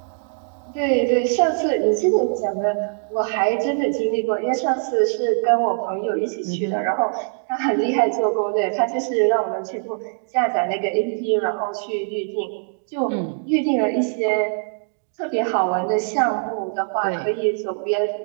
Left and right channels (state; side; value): silent; left; digital silence